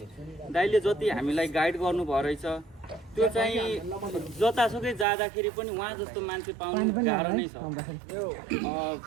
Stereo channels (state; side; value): drops out; left; at 5.1 s